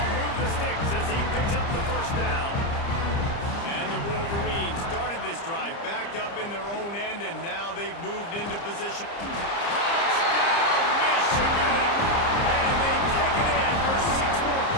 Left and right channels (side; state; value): right; late; 30 ms